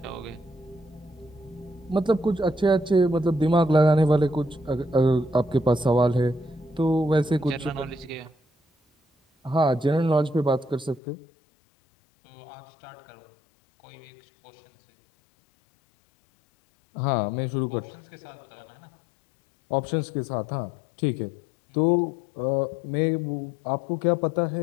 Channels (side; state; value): right; drops out; at 11.0 s